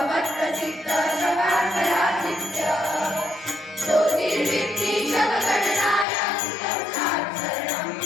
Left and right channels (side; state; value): right; drops out; at 6.1 s